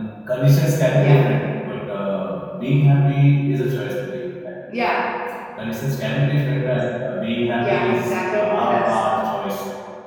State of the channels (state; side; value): identical; both; correlation 1.00